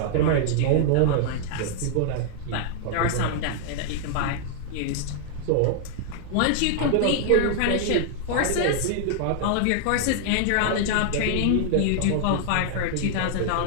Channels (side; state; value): both; different; correlation -0.01